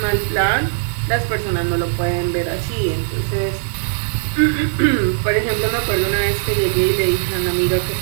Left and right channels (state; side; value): silent; left; digital silence